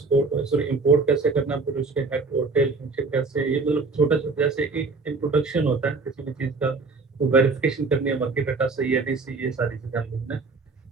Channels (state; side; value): quieter; left; 4.1 dB